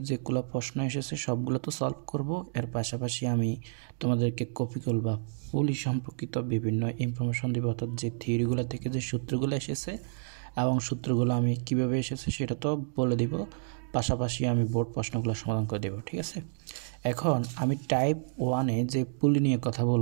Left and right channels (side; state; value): left; silent; digital silence